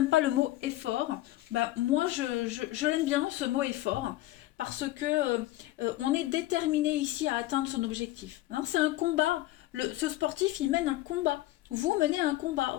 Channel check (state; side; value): quieter; right; 16.6 dB